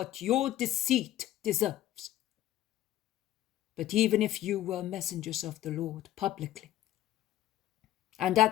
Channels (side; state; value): right; quieter; 13.5 dB